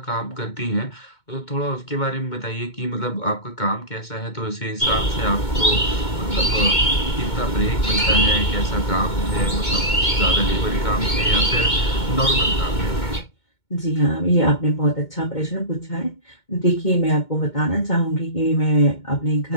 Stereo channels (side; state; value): right; late; 2.2 ms